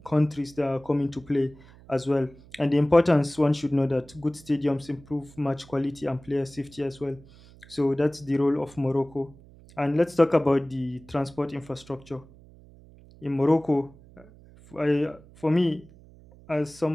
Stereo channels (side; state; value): right; noise; hum, 23 dB below the sound